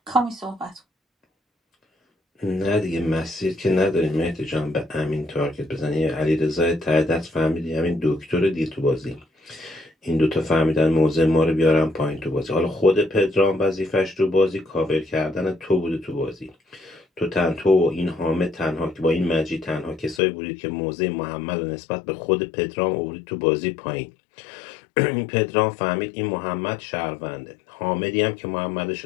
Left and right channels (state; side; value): drops out; right; at 20.2 s